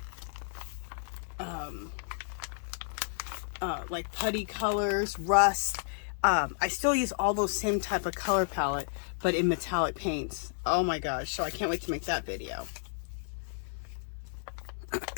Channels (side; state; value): right; silent; digital silence